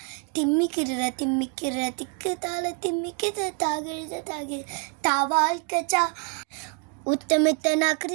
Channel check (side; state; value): left; quieter; 37.3 dB